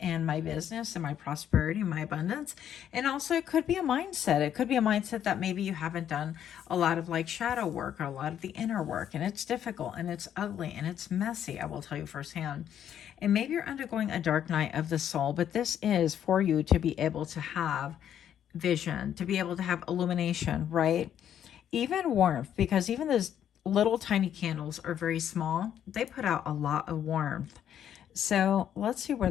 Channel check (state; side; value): quieter; right; 9.9 dB